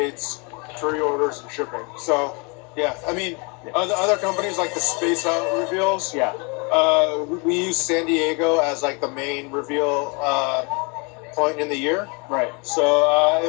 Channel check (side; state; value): right; quieter; 32.1 dB